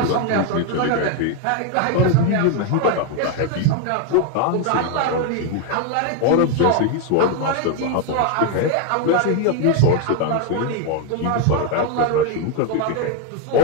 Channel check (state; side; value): different; both; correlation 0.01